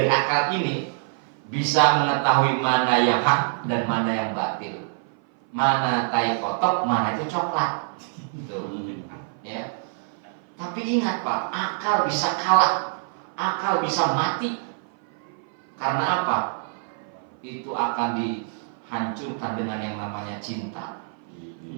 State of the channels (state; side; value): silent; left; 56 dB below the other